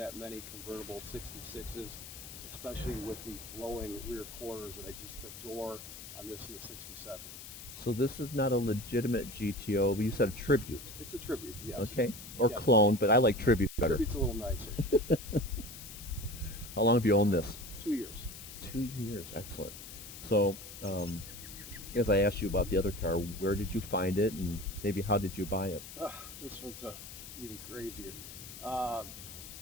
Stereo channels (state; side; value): noise; left; hiss, 13 dB below the sound